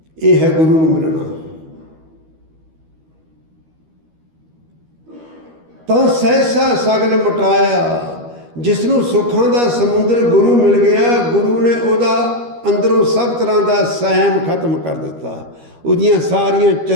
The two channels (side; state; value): left; late; 13 ms